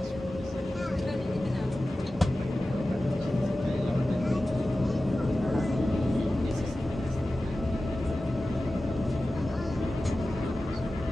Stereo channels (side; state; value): both; normal; correlation 0.95